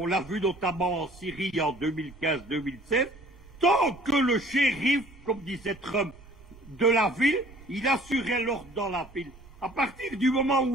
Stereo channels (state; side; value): noise; right; rumble, 21 dB below the sound